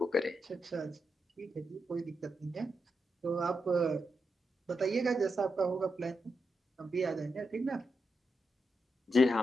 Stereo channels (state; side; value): normal; both; correlation 0.85